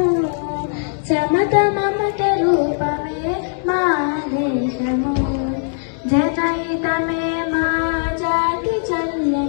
సమత మమత రూపమే మా దేశము. జనహితమే మా జాతి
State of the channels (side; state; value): right; silent; digital silence